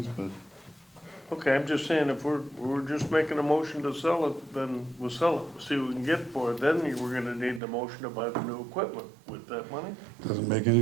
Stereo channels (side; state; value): left; drops out; at 7.6 s